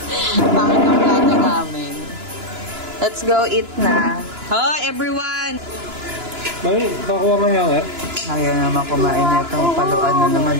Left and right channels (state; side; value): late; left; 2.9 ms